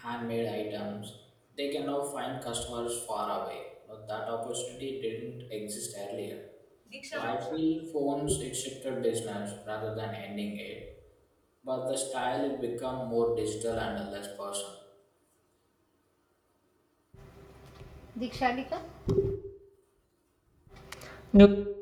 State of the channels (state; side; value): identical; both; correlation 1.00